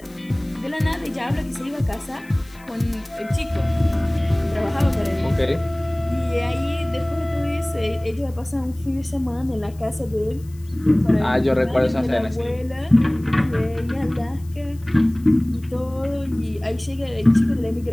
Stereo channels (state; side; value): noise; left; hiss, 26 dB below the sound